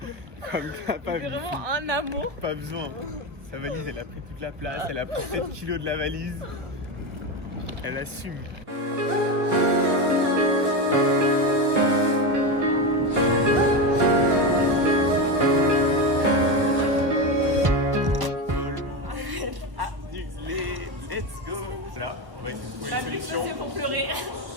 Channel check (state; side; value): late; left; 1.1 ms